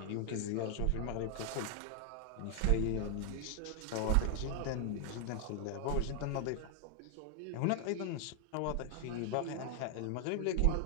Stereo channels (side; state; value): both; different; correlation 0.00